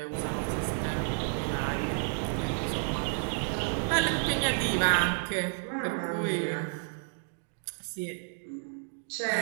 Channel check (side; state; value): left; silent; 56 dB below the other